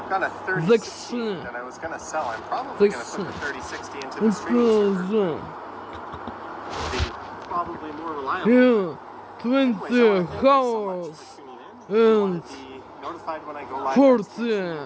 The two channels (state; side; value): identical; both; correlation 1.00